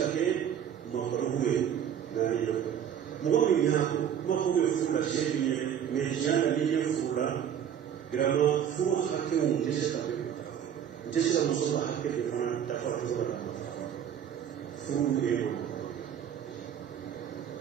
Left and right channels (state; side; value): quieter; left; 9.1 dB